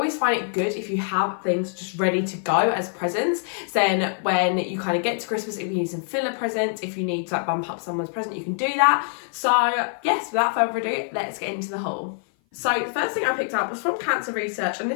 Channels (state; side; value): silent; right; 56 dB below the other